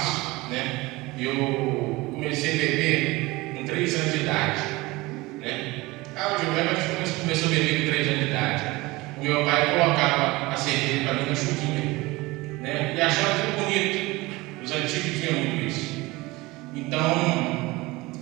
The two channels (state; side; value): quieter; left; 21.6 dB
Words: né? Eu comecei a beber com 3 anos de idade, né? Eu lembro que a gente começou a beber com 3 anos de idade. O meu pai colocava a cerveja para mim na chuquinha, né? E achava tudo bonito. Os antigos tinham muito isso. Então,